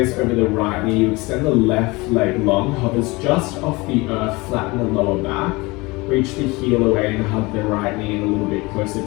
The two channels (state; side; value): quieter; right; 23.7 dB